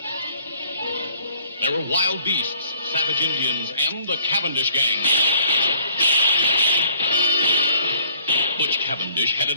There were wild beasts, savage Indians, and the Cavendish gang. Butch Cavendish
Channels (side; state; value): both; inverted; correlation -0.58